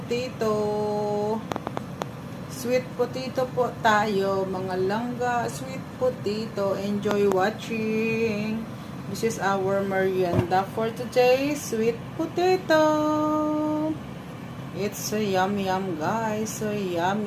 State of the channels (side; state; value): both; identical; correlation 1.00